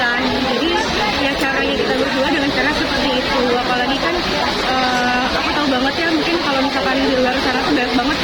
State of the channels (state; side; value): identical; both; correlation 1.00